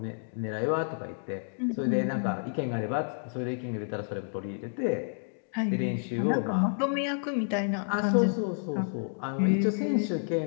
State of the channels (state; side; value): silent; right; digital silence